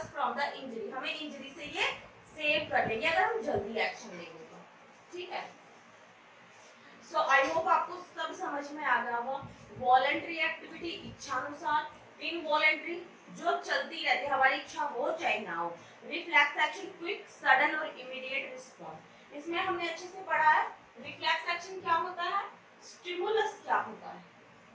from the injury, हमें इंजरी से ये सेव कर लेंगे अगर हम जल्दी एक्शन लेंगे तो, ठीक है। सो आई होप आपको सब समझ में आ गया होगा। वॉलंटरी एक्टिविटी इच्छानुसार, इनवॉलंटरी जो चलती रहती है, हमारी इच्छा हो चाहे ना हो। रिफ्लेक्स एक्शन क्विक सडन और इमीडिएट रिस्पॉन्स, इसमें हमने अच्छे से पढ़ा है रिफ्लेक्स एक्शन क्या होता है, स्टिमुलस क्या होता है,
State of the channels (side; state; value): both; identical; correlation 1.00